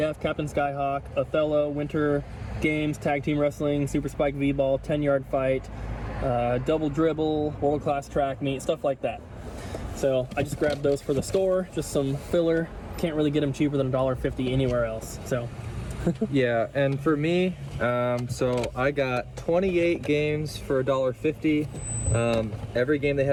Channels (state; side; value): identical; both; correlation 1.00